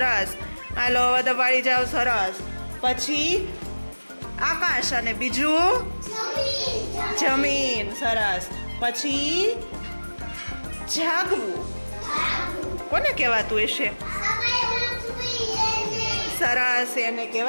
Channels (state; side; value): inverted; both; correlation -1.00